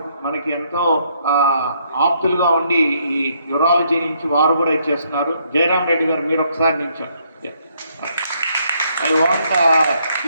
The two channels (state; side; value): inverted; both; correlation -0.71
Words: మనకి ఎంతో ఆప్తులుగా ఉండి ఈ యూరాలజీ నుంచి వారు కూడా ఇచ్చేస్తున్నారు. జయరామ్ రెడ్డి గారు మీరు ఒకసారి నిల్చోండి. ఐ వాంట్